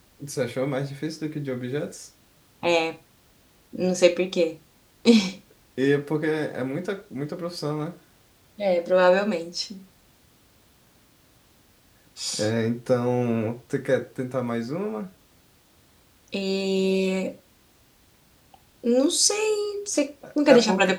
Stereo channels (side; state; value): both; identical; correlation 1.00